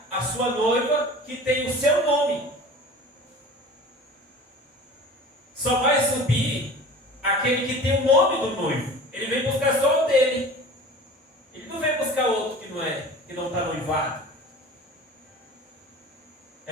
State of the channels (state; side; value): normal; both; correlation 0.40